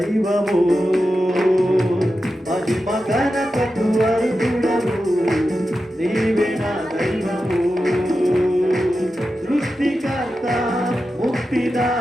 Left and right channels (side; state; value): both; normal; correlation 0.91